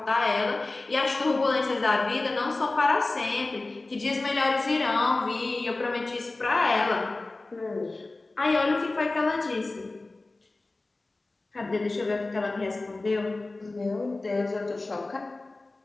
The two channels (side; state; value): right; quieter; 3.2 dB